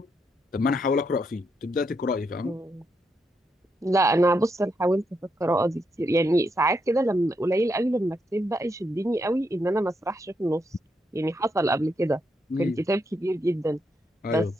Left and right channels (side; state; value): both; normal; correlation 0.80